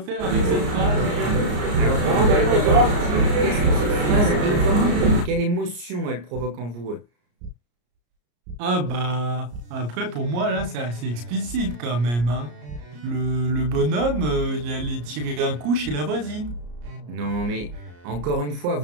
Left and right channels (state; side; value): late; left; 34 ms